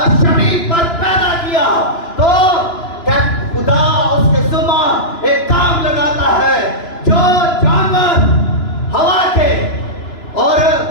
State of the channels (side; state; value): right; late; 2.9 ms